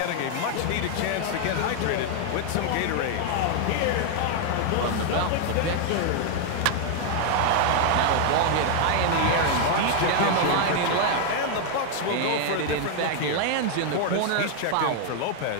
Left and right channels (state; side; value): different; both; correlation 0.00